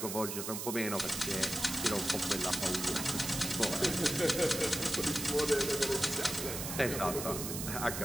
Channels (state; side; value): noise; right; hiss, 5 dB below the sound